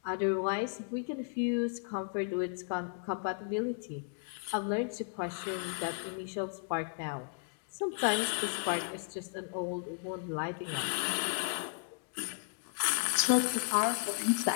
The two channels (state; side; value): silent; right; digital silence